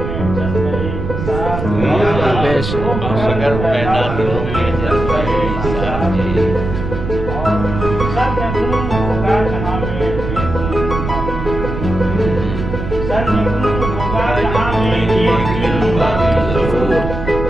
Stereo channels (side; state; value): right; noise; rumble, 5 dB below the sound